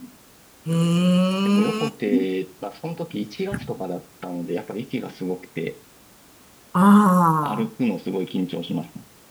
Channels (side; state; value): both; identical; correlation 1.00